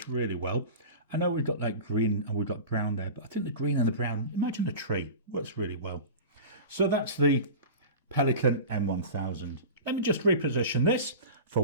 really well. I know we've got like green and we've got brown there, but I think the green and the brown, imagine a tree, works really well. So that's the Pelican M1000. Let me just reposition this for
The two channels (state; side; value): inverted; both; correlation -0.33